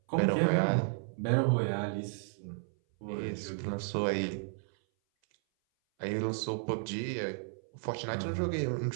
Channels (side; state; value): left; silent; 56 dB below the other